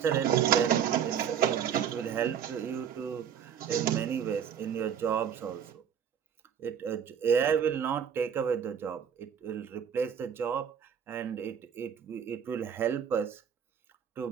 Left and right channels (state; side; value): quieter; left; 8.1 dB